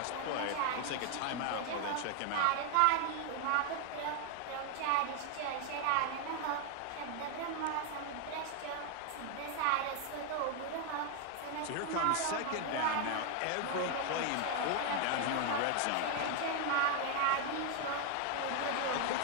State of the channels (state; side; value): different; both; correlation 0.01